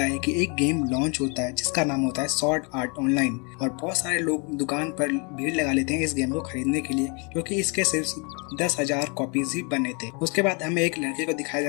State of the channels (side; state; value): right; quieter; 33.2 dB